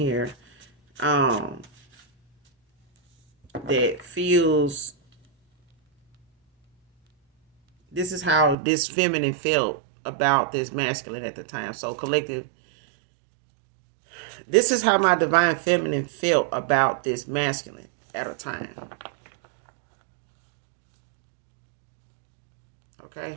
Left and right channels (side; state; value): left; drops out; at 8.6 s